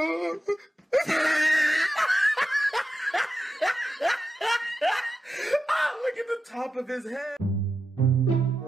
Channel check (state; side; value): normal; both; correlation 0.90